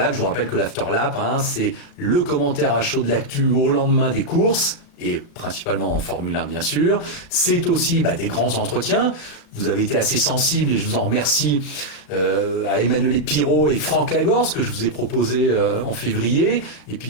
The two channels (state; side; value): late; right; 36 ms